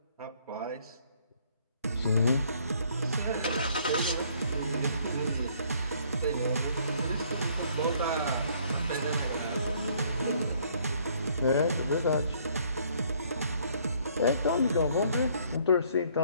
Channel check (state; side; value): inverted; both; correlation -0.63